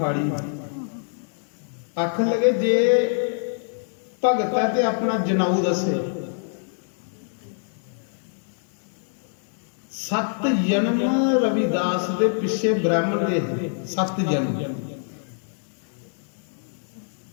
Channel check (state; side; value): silent; right; digital silence